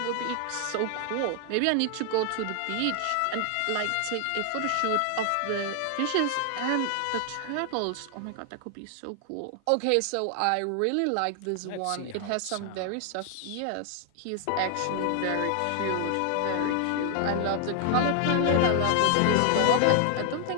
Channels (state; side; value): different; both; correlation 0.00